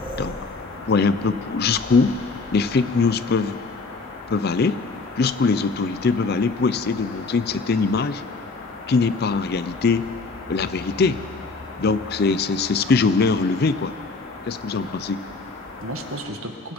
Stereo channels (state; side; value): quieter; right; 4.0 dB